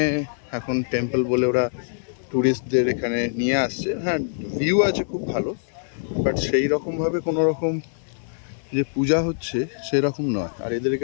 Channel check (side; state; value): right; silent; 60 dB below the other